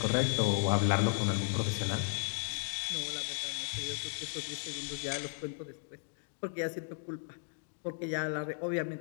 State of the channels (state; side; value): silent; right; digital silence